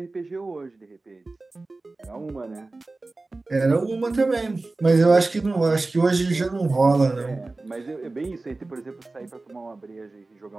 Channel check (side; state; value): left; quieter; 3.3 dB